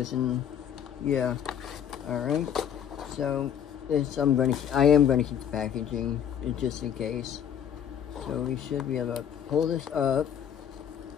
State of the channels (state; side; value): quieter; right; 8.9 dB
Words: And yeah, all right. So this I am gonna keep the packaging just in case. So we should be able to pull this up.